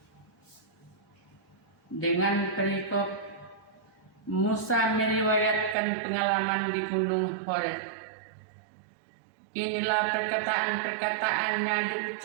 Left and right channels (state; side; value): drops out; left; at 5.8 s